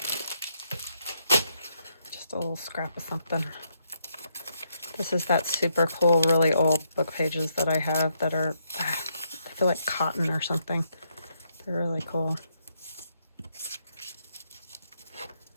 Just a little scrap of something. This is that super cool, really old book pages that I have that are, I feel like cotton or something. They're really cool.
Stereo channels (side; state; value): both; inverted; correlation -0.76